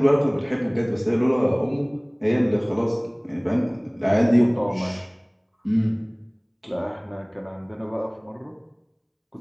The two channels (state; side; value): identical; both; correlation 1.00